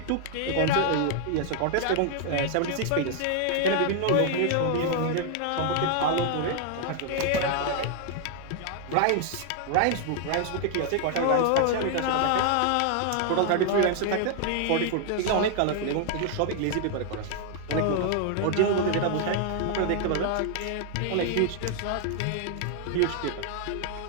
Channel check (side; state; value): both; different; correlation 0.00